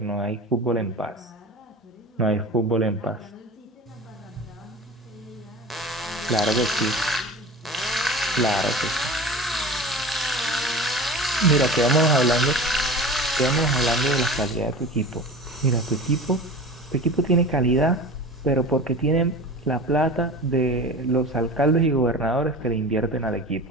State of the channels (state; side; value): normal; both; correlation 0.35